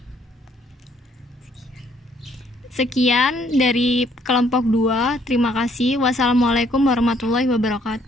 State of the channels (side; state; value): both; normal; correlation 0.66